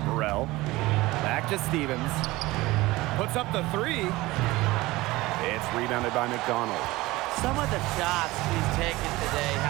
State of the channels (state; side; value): quieter; left; 19.7 dB